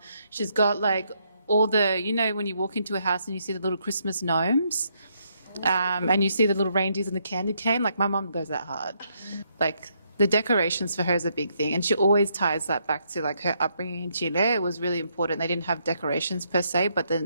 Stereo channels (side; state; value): both; inverted; correlation -0.75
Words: She's got like all the, when you walk into a house and you see the little Christmas gnomes, and you see the little reindeers and the candy cane. Like my mom goes that hard. Like the decorations for her is a big thing, and she always ties that back to like her upbringing in Chile. It was really important. They didn't have decorations per se, but